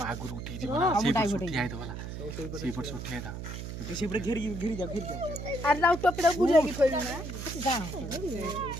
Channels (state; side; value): noise; right; hum, 7 dB below the sound